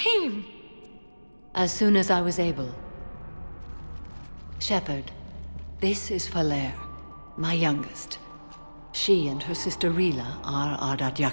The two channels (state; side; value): inverted; both; correlation -1.00